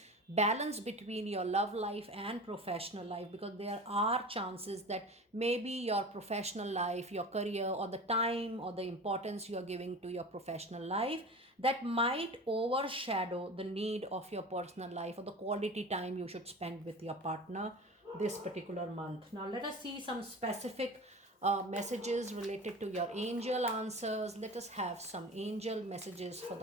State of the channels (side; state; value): both; normal; correlation 0.34